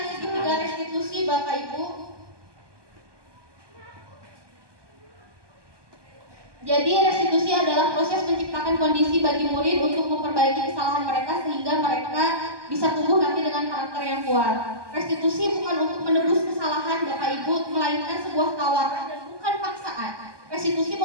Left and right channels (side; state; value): left; late; 1.2 ms